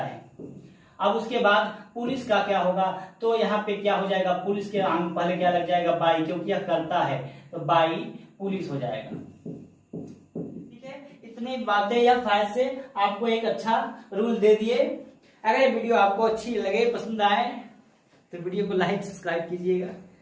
अब उसके बाद पुलिस का क्या होगा, तो यहाँ पे क्या हो जाएगा, पुलिस के पहले क्या लग जाएगा, बाई, क्योंकि यह करता है तो बाई पुलिस हो जाएगा। इतनी बातें या फायदे से आपको एक अच्छा रूल दे दिए। अगर ये वीडियो आपको अच्छी लगे, पसंद आए तो वीडियो को लाइक सब्सक्राइब कीजिएगा।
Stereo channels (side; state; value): both; identical; correlation 1.00